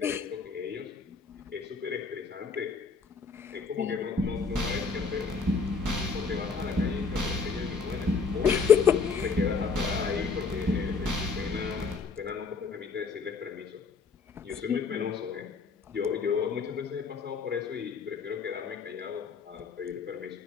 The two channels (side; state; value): right; quieter; 5.0 dB